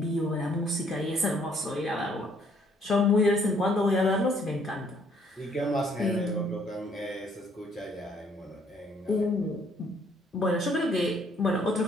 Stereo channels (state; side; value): normal; both; correlation 0.65